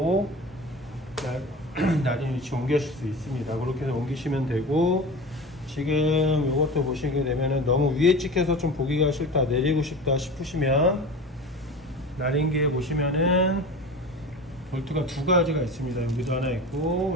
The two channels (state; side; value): normal; both; correlation 0.33